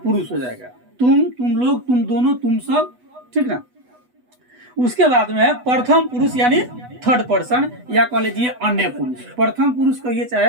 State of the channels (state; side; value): late; left; 8.1 ms